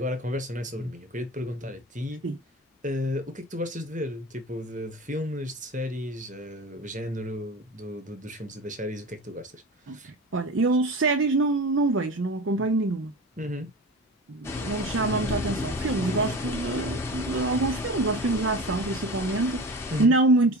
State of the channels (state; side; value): normal; both; correlation 0.32